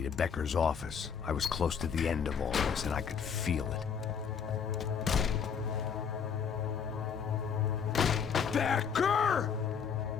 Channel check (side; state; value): right; quieter; 6.9 dB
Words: to Becker's office. I was close to the end of all this, and I could feel it. Becker!